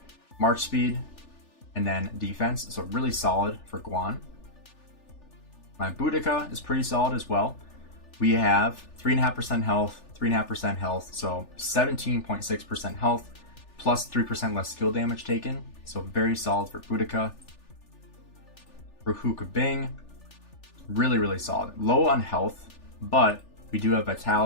March speed, and then defense. So really solid for Guan. My Boudica is pretty solid as well. We have 3.5% health, 3.5% health, so 17.6% health, plus 3% less skill damage taken. So very solid for Boudica. For Hookah Bing, really, really solid. Low on health, but we do have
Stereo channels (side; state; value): right; late; 3.4 ms